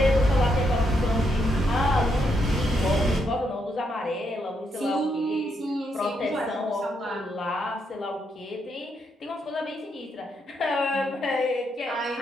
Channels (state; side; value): normal; both; correlation 0.78